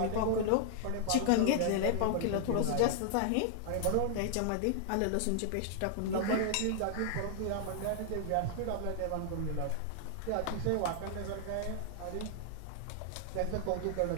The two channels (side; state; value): both; different; correlation -0.01